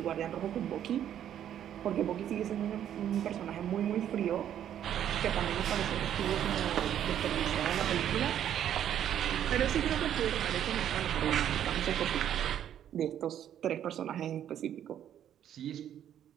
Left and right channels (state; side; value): quieter; left; 10.3 dB